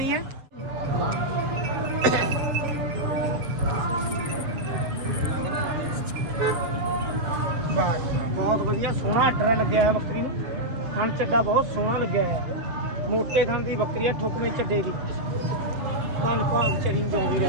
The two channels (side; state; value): left; late; 7.9 ms